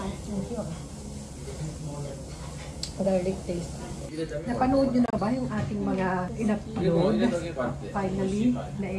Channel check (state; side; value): identical; both; correlation 1.00